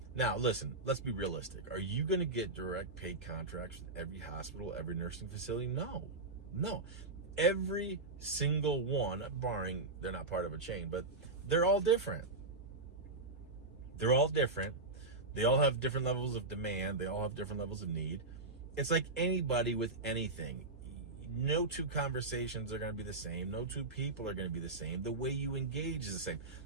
Now, listen, let's be realistic. Are you going to get direct paid contracts with every hospital, every nursing facility? No. Every single one, barring they're not part of a chain, but they're all different. They all have different levels of demand. They all have different levels of need. It's like anybody with anything. No two conversations are going to be the same. No two people are going to be the same. The way you engage is the same.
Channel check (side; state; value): left; quieter; 3.2 dB